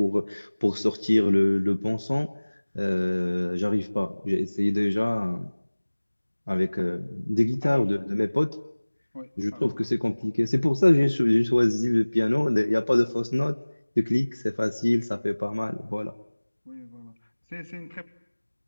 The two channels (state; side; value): inverted; both; correlation -1.00